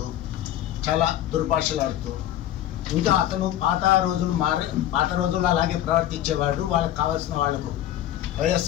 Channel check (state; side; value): quieter; right; 12.4 dB